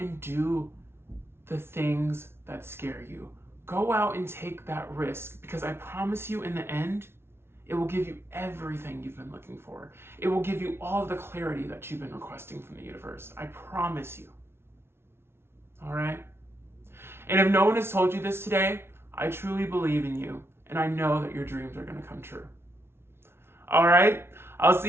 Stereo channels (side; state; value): left; late; 0.12 ms